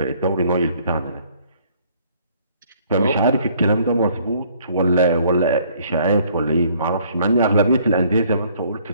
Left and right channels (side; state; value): both; inverted; correlation -0.62